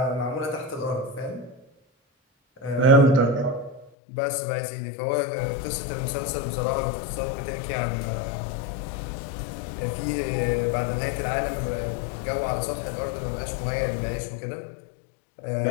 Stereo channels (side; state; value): right; drops out; at 3.9 s